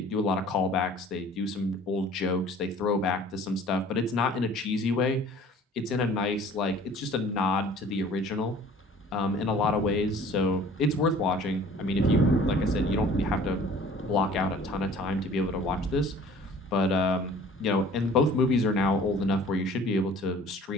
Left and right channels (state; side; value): normal; both; correlation 0.49